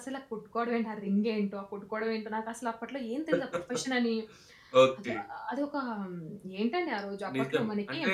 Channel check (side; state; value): both; identical; correlation 1.00